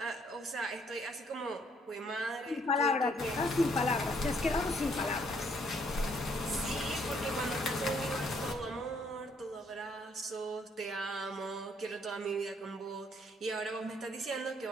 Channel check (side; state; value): both; normal; correlation 0.67